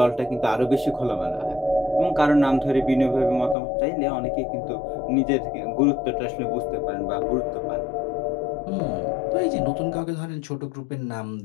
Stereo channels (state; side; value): drops out; right; at 3.6 s